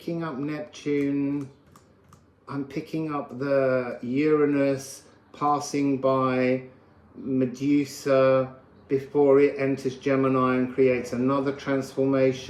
up Neptune. I'm picking up the Uranus passing by Medusa, before it enters Gemini and creates another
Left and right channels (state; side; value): identical; both; correlation 1.00